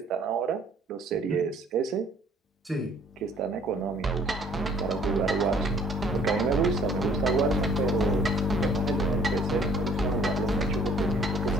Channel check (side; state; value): both; normal; correlation 0.57